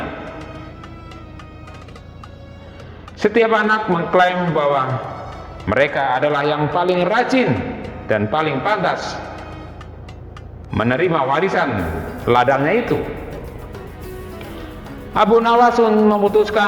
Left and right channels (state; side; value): identical; both; correlation 1.00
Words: Setiap anak mengklaim bahwa mereka adalah yang paling rajin dan paling pantas menerima warisan ladangnya itu. Abu Nawas